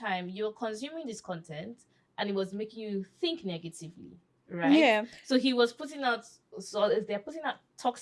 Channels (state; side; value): identical; both; correlation 1.00